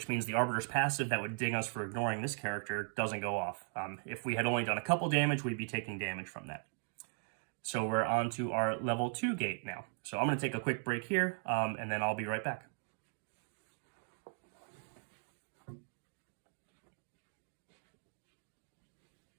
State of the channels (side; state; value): left; silent; 52 dB below the other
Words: means the Arbiter's passive that would ding us for ignoring this character doesn't go off. If we had only done a couple damage, we'd be taking damage from that. So we're on to our level 2 gate now. So I'm going to take a quick break here, and then I'll be right back.